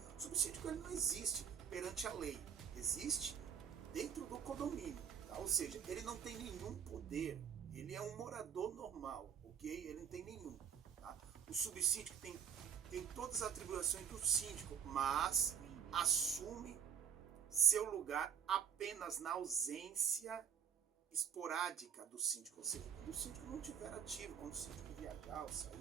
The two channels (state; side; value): quieter; left; 8.3 dB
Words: o subsíndico ele não existe perante a lei, existe dentro do condomínio, tá? Ou seja, ele não tem nenhum poder, ele é um morador normal, ok? Ele não tem nenhum, tá? O subsíndico tem todas as atribuições do síndico, mas assume seu lugar apenas na ausência esporádica do síndico, ou seja, quando o síndico não estiver ativo, quando o síndico viajar ou